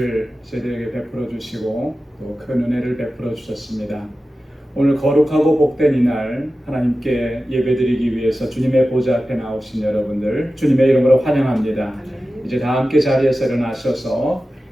저희들에게 베풀어 주시고 또 큰 은혜를 베풀어 주셨습니다. 오늘 거룩하고 복된 이날 하나님께 예배드리기 위해서 주님의 보좌 앞에 나오신 여러분들 주님의 이름으로 환영합니다. 이제 다 함께 자리에서 일어나셔서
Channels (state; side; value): normal; both; correlation 0.94